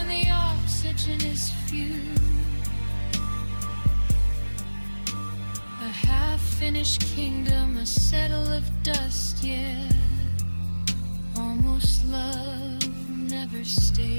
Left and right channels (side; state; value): both; inverted; correlation -1.00